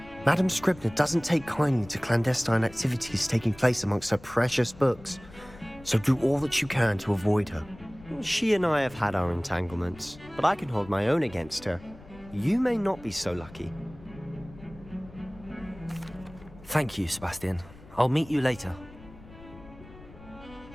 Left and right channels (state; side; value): noise; left; rumble, 20 dB below the sound